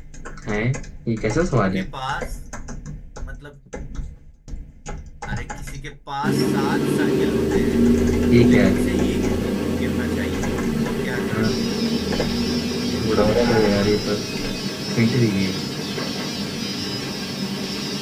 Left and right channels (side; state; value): both; identical; correlation 1.00